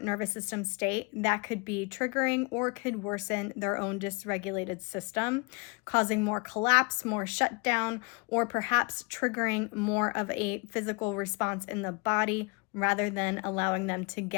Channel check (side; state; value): right; quieter; 30.7 dB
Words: nervous system state, that could be triggering or could worsen their own dysregulated system, causing more collapse, more shutdown, or perhaps triggering more of a physical response in the body rather than allowing them to